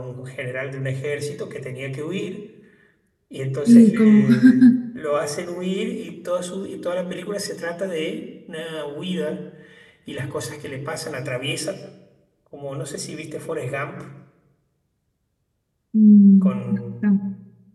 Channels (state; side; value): identical; both; correlation 1.00